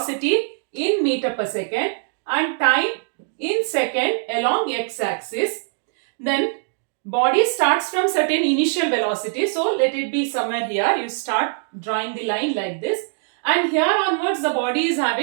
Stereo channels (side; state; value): left; silent; digital silence